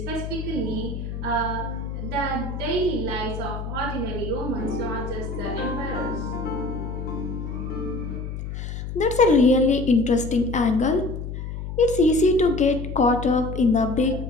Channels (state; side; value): noise; left; hum, 7 dB below the sound